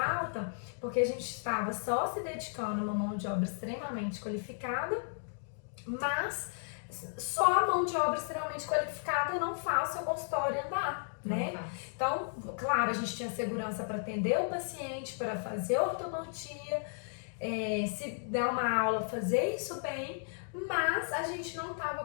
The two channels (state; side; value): silent; right; digital silence